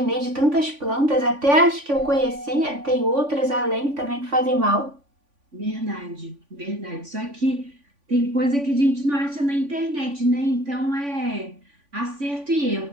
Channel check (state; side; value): late; left; 3.5 ms